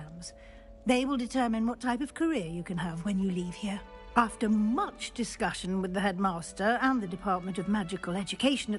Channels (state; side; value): identical; both; correlation 1.00